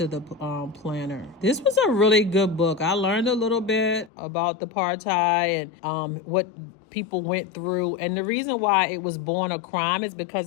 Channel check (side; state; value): right; drops out; at 4.1 s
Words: the planner. This was a really good book. I learned a little bit about the apartheid and what people went through. And the reason why it was Born a Crime is